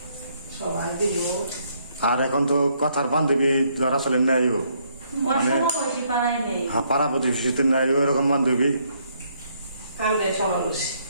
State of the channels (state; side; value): inverted; both; correlation -0.71